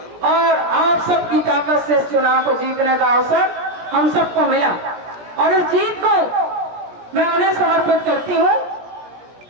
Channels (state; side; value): late; left; 17 ms